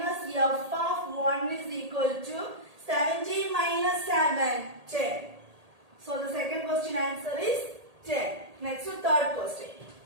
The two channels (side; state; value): left; late; 1.8 ms